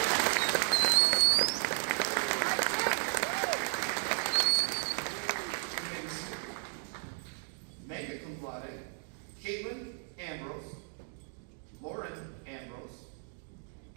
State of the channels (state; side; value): silent; left; 55 dB below the other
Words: Mega cum laude, Caitlin Ambrose, Lauren Ambrose,